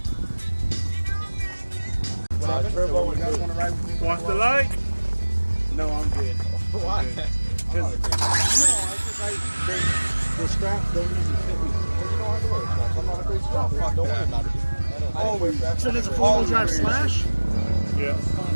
Turbo, you guys want to ride with me? Watch the light. No, I'm good. Why? The straps don't usually fit me. Well, you don't have to wear straps. I'm not a great strap. Don't worry about it. So there's a four-wheel drive Slash? Yeah.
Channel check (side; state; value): both; inverted; correlation -1.00